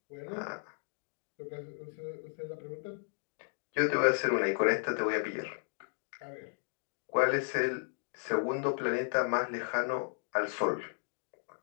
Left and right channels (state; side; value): silent; right; 55 dB below the other